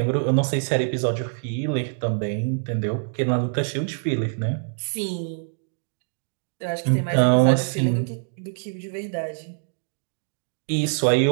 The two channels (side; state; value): left; silent; digital silence